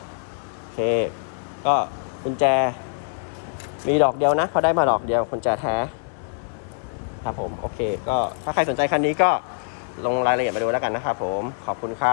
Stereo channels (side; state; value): right; silent; digital silence